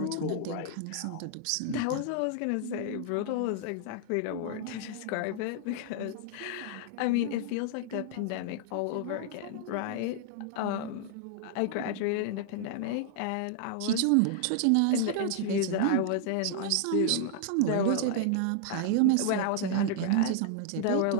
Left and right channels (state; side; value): different; both; correlation -0.01